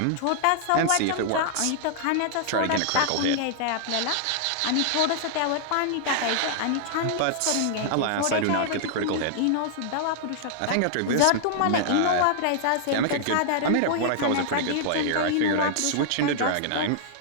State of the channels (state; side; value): different; both; correlation -0.01